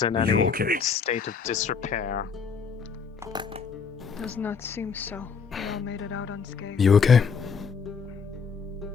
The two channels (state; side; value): quieter; right; 5.9 dB